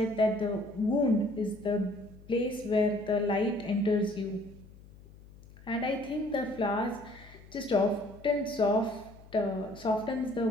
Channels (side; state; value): left; noise; hum, 21 dB below the sound